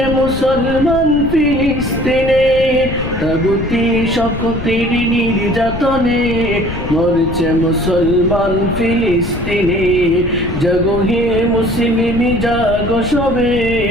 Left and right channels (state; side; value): noise; left; rumble, 8 dB below the sound